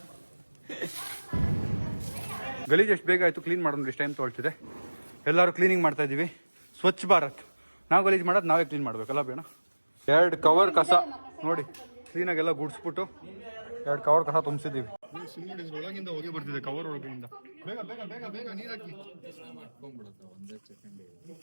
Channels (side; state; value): both; inverted; correlation -1.00